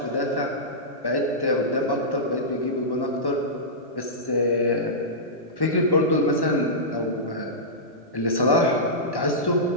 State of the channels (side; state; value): right; late; 1.1 ms